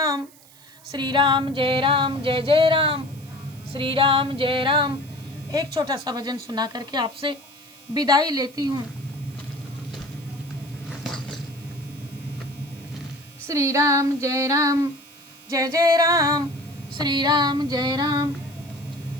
श्री राम जय राम जय जय राम, श्री राम जय राम। एक छोटा सा भजन सुना करके आपसे विदाई लेती हूँ। श्री राम जय राम जय जय राम, श्री राम जय राम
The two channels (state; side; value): noise; right; hiss, 25 dB below the sound